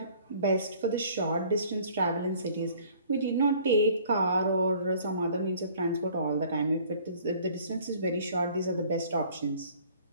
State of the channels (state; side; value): inverted; both; correlation -0.54